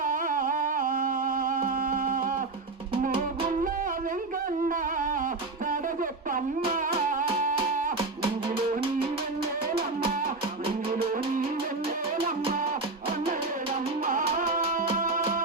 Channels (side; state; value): left; quieter; 3.5 dB